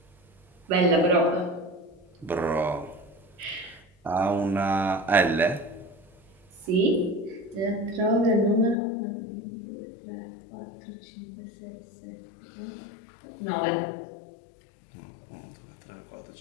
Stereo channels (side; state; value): right; drops out; at 8.8 s